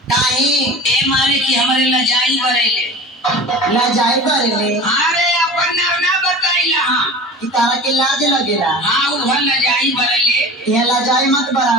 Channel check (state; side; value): normal; both; correlation 0.36